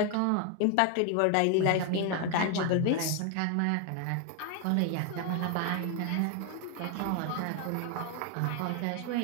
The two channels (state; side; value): different; both; correlation 0.01